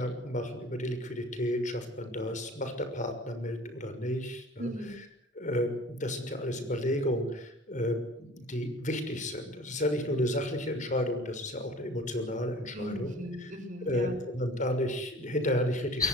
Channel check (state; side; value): normal; both; correlation 0.45